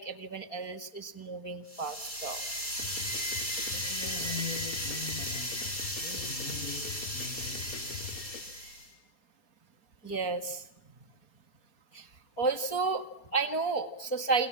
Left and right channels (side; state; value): right; late; 4.3 ms